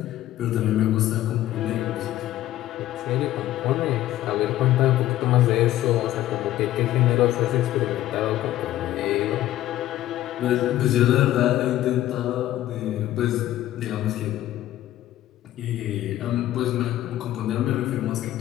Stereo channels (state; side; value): quieter; right; 13.9 dB